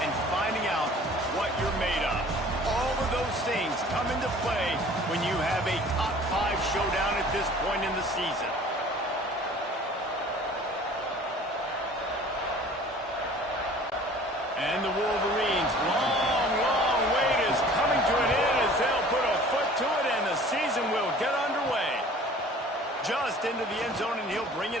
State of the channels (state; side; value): normal; both; correlation 0.48